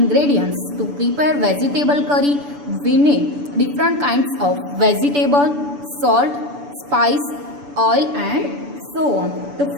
To prepare vegetable curry, we need different kinds of vegetable, salt, spice, oil and so on. तो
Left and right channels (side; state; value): left; late; 6.9 ms